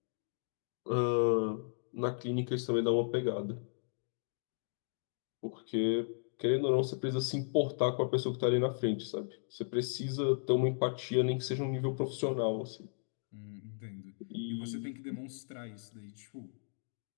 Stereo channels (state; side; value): silent; right; digital silence